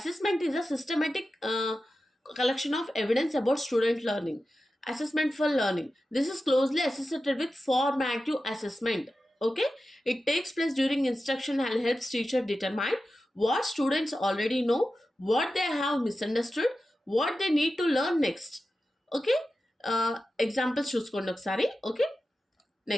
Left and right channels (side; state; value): both; normal; correlation 0.92